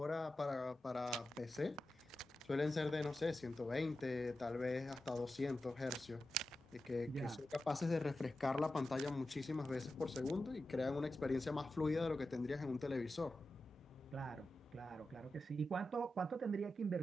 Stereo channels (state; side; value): normal; both; correlation 0.91